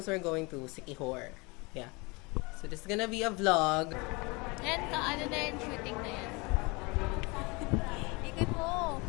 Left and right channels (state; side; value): quieter; right; 27.1 dB